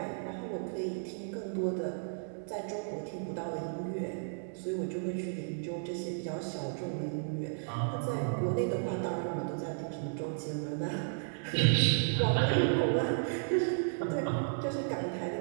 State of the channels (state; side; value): silent; left; digital silence